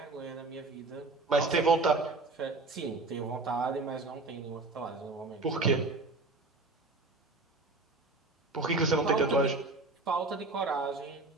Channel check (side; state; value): left; quieter; 3.4 dB